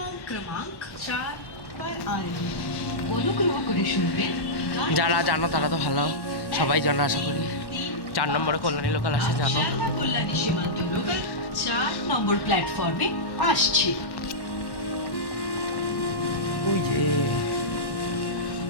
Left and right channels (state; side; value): late; right; 1.1 ms